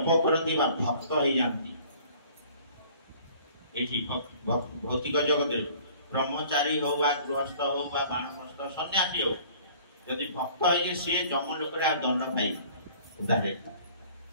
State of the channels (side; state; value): both; inverted; correlation -0.52